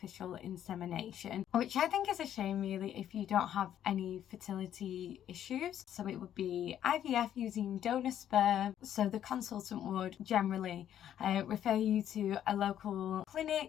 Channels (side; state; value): right; quieter; 10.6 dB